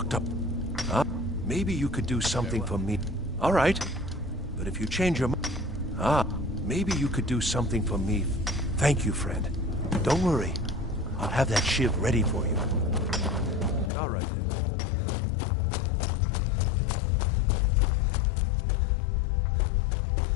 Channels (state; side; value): drops out; right; at 13.9 s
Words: up. Huh? Maybe you could do something for me. All right. But if you change your mind... maybe you could do something for me. Thank you, friend. Don't worry. I'll have that shiv ready for you. All right, then.